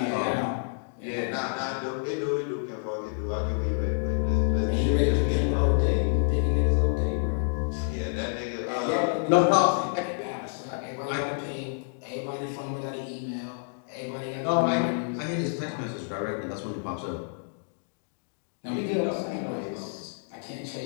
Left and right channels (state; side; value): silent; right; digital silence